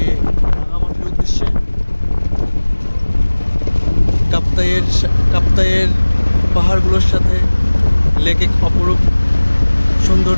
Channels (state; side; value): inverted; both; correlation -1.00